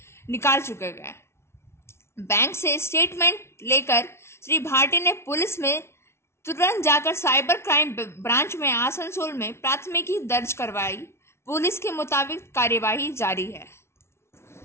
निकाल चुके गए। बैंक से स्टेटमेंट लेकर श्री भाटी ने पुलिस में तुरंत जाकर साइबर क्राइम ब्रांच में आसनसोल में प्राथमिकी दर्ज करवाई। पुलिस के मुताबिक कार्यवाही जारी है।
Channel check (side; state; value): right; late; 0.13 ms